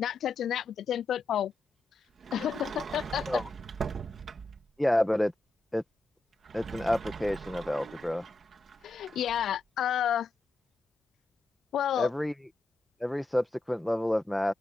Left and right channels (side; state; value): right; quieter; 3.0 dB